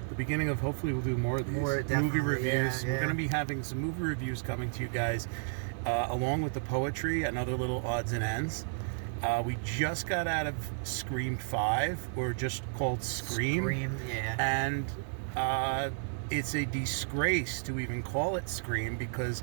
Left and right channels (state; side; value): silent; left; 56 dB below the other